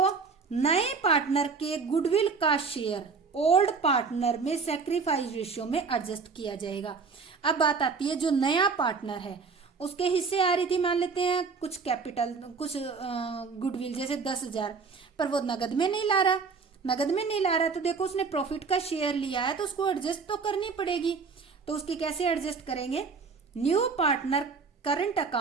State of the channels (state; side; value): quieter; left; 5.0 dB